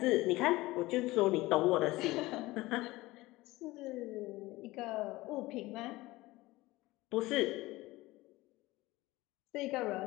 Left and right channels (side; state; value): right; quieter; 19.4 dB